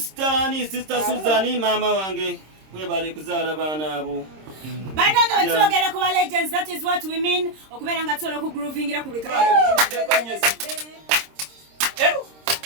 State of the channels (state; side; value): late; left; 26 ms